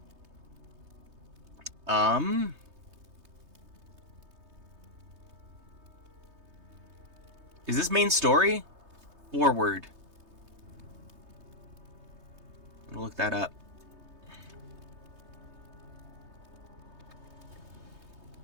Is this main story? Forward. I'm gonna look that up.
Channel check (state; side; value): late; left; 3.2 ms